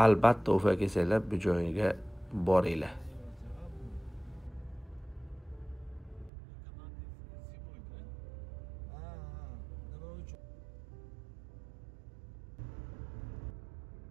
Albatta Ufa kelsanglar bu joyga boringlar.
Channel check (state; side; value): drops out; left; at 6.3 s